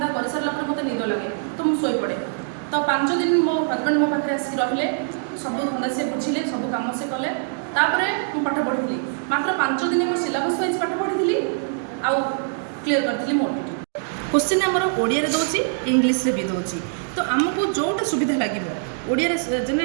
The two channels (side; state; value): left; silent; digital silence